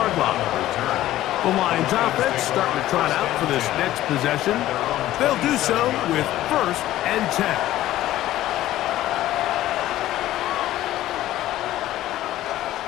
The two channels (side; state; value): right; quieter; 14.4 dB